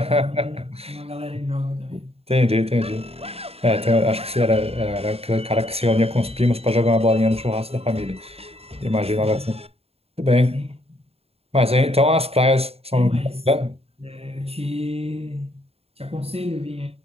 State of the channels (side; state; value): left; late; 0.29 ms